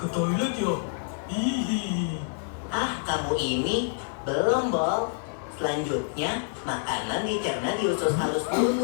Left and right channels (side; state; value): right; silent; 57 dB below the other